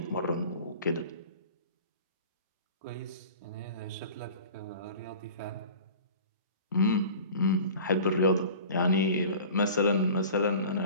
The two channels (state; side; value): inverted; both; correlation -0.41